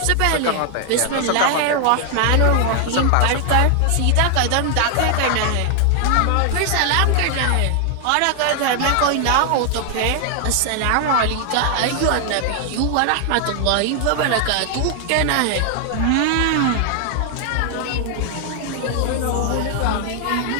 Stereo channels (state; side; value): different; both; correlation 0.00